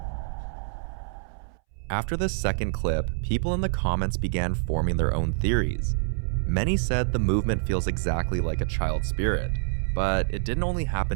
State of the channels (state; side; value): silent; left; 61 dB below the other